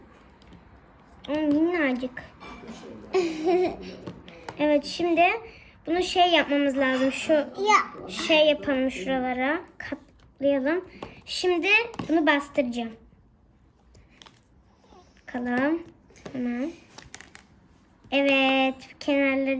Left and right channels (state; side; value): identical; both; correlation 1.00